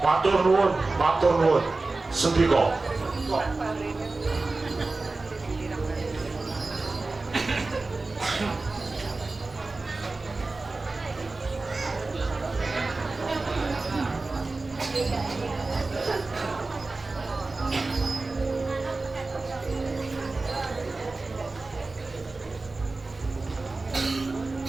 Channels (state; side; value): quieter; left; 3.5 dB